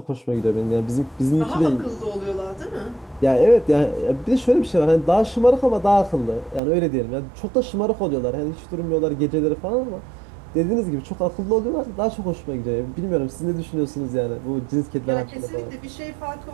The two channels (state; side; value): drops out; left; at 6.6 s